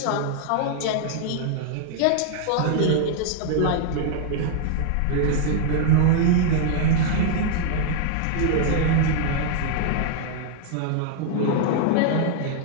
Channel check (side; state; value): both; different; correlation 0.00